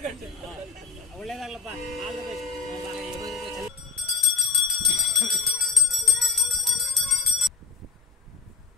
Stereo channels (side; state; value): right; quieter; 5.4 dB